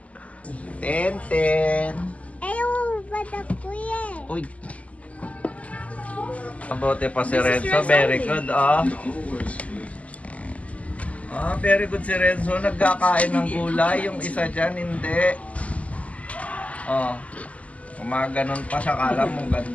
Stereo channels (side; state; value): right; late; 0.068 ms